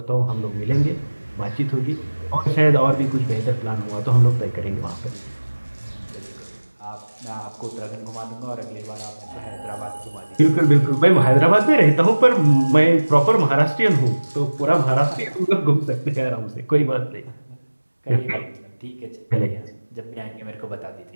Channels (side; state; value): both; inverted; correlation -1.00